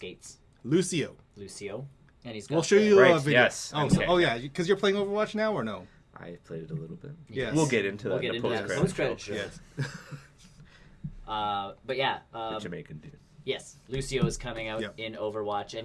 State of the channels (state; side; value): identical; both; correlation 1.00